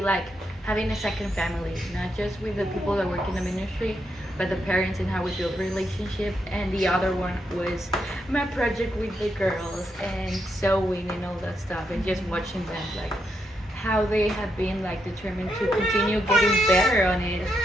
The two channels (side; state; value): both; normal; correlation 0.81